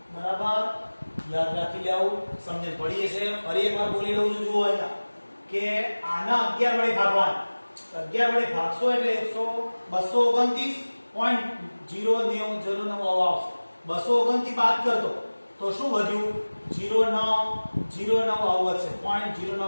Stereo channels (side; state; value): both; inverted; correlation -1.00